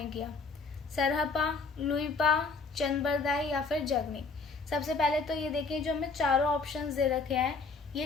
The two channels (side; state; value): right; quieter; 4.3 dB